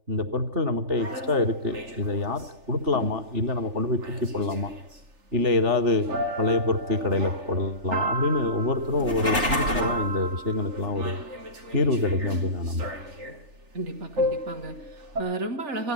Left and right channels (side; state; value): left; late; 3.4 ms